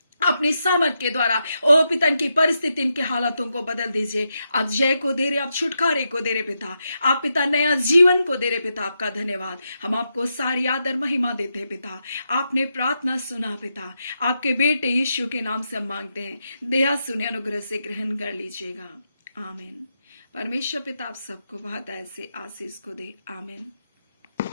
अपनी सामर्थ के द्वारा ओ पिता इनकी परिस्थिति, इनके हालातों को बदल दीजिए। आप जय को दे रहे, आप छुटकारे को दे रहे पिता, आप पिता नया जीवन को दे रहे पिता, आपका धन्यवाद। हम आपको सारी आदर महिमा देते हैं पिता, आपने प्रार्थना सुना पिता, आपके बेटे यीशु के नाम से हम मांगते हैं, दया सुने, अनुग्रह से ग्रहण कर लीजिएगा, आमीन। परमेश्वर पिता आप सबको बहुत ऐसे आशीष को दे, आमीन।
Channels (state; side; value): inverted; both; correlation -0.85